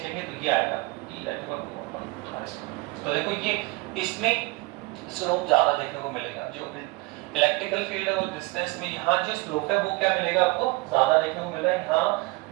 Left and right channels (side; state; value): left; quieter; 23.7 dB